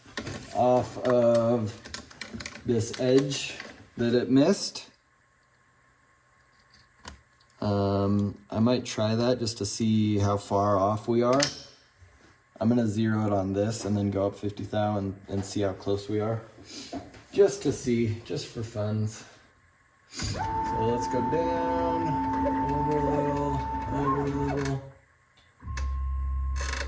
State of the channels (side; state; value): both; identical; correlation 1.00